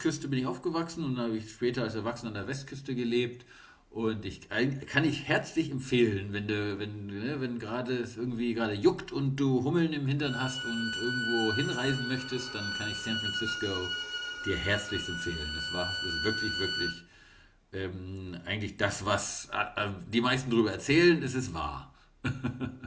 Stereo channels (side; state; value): both; identical; correlation 1.00